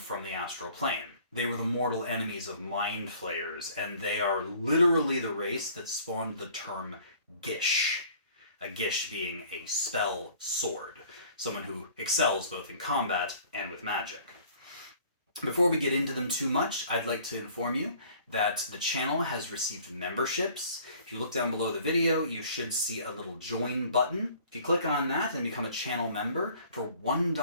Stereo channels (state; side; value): inverted; both; correlation -0.53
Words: the astral plane. They were the mortal enemies of mind flayers, and they are literally the race that spawned the term Gish. A Gish being a spell sword, someone who excels both in combat and with magic. Before we get into them too much, I'd like to inform you that the channel has received memberships. If you look down below the video, you should see a little join button. If you click on that and become a channel member, for